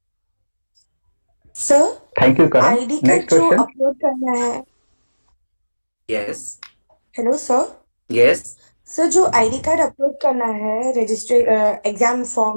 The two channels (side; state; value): both; inverted; correlation -1.00